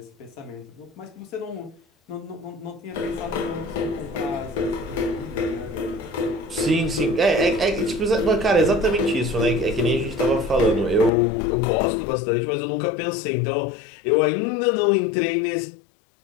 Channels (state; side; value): drops out; right; at 11.1 s